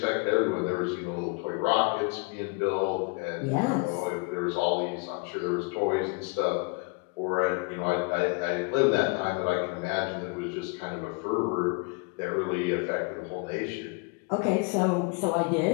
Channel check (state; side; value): quieter; right; 30.2 dB